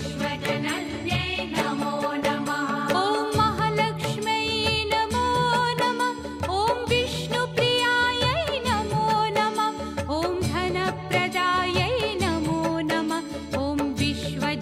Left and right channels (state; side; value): identical; both; correlation 1.00